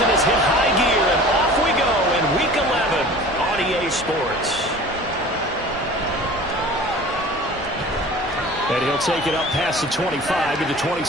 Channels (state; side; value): normal; both; correlation 0.42